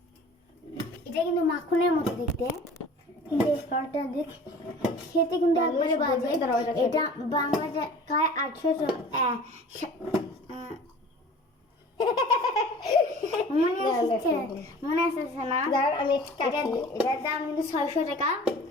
এটা কিন্তু মাখনের মতো দেখতে, কিন্তু এই ফলটা দেখ খেতে কিন্তু একবারে বাজে। এটা বাংলা টাকায় 800 মনে আসছে না? আমি এটার দাম কিন্তু 600 টাকা।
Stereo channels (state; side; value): normal; both; correlation 0.44